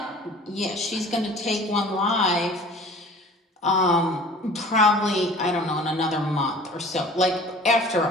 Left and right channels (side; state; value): both; normal; correlation 0.46